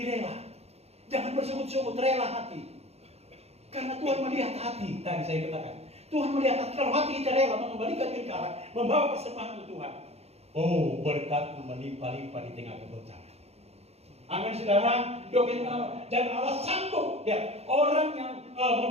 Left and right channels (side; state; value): left; late; 0.30 ms